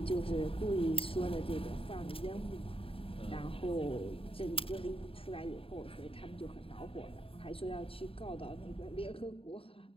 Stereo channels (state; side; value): late; right; 0.27 ms